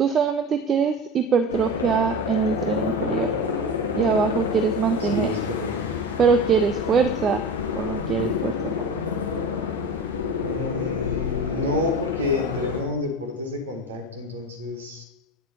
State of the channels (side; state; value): both; normal; correlation 0.31